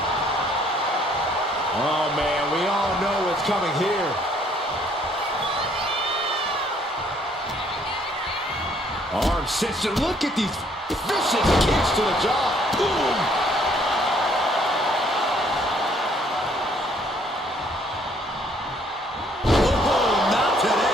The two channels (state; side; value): normal; both; correlation 0.64